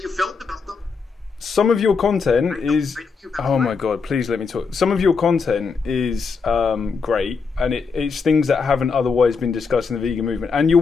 you felt about them. Some of your content is. I know. Oh my god! Please let me talk. Some of your content is great, and it's things that haven't otherwise been discussed in the vegan movement. And you're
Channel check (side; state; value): right; quieter; 5.1 dB